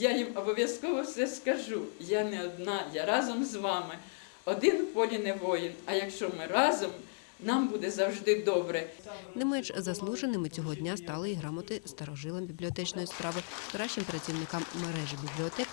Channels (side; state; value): right; silent; digital silence